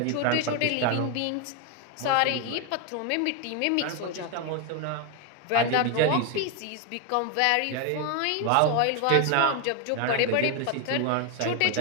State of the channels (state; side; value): different; both; correlation 0.01